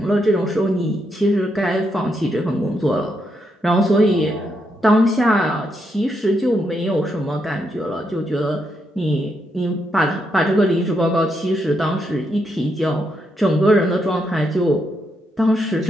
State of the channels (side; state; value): both; normal; correlation 0.80